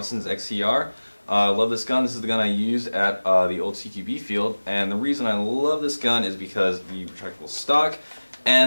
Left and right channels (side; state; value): both; inverted; correlation -1.00